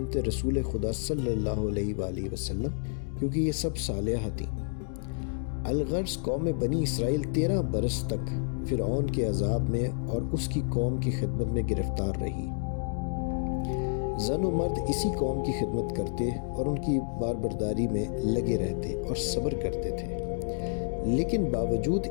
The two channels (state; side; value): silent; right; digital silence